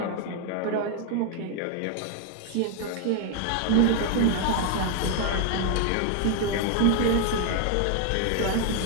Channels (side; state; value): both; different; correlation 0.00